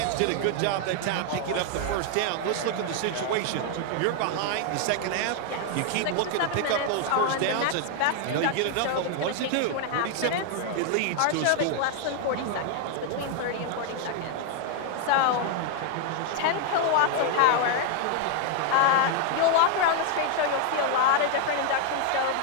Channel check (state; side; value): different; both; correlation 0.01